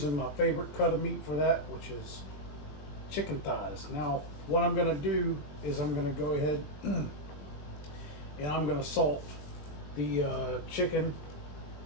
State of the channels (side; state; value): right; late; 20 ms